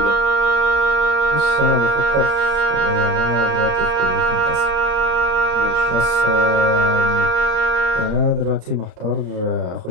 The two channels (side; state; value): left; late; 35 ms